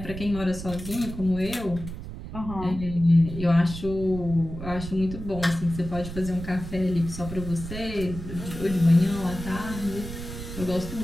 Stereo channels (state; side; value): noise; right; rumble, 9 dB below the sound